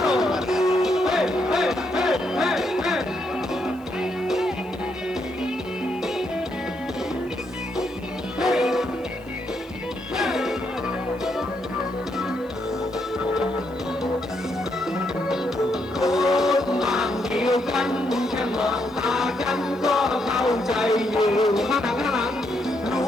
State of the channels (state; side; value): noise; right; hiss, 28 dB below the sound